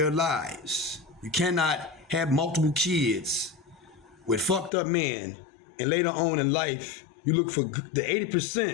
lives. You cannot have multiple kids with fucked up men and later on in life you look for the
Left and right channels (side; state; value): right; drops out; at 4.7 s